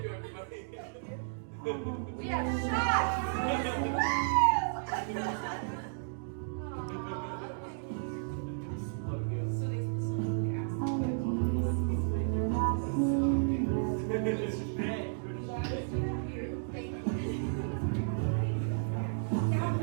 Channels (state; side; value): silent; left; digital silence